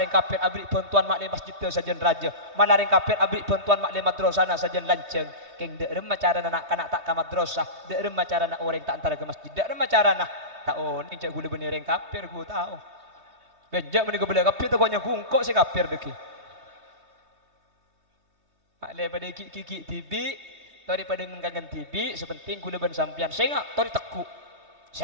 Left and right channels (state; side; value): late; left; 3.2 ms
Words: kafir abri bantuan mak masjid teu sajen raja. Malah reng kafir abri bantuan mak madrasah na sajen lanceng. Keng deurem macarana nak kanak tak ka madrasah. Deurem macarana orang tak antara ke masjid. Deurem macarana tahu ni cak gula bener reng kafir ku tahu. Bejak meni gula kafir tu koknya kungkok si kafir deki. mak daripada kiki tibi daripada ngengangan tibi sepenting kula ban sampean sengak tori teku